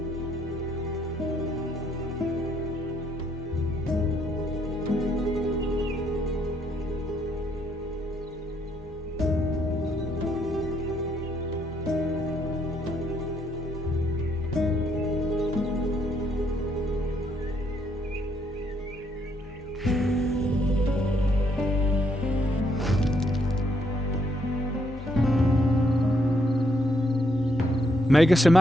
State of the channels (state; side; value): normal; both; correlation 0.72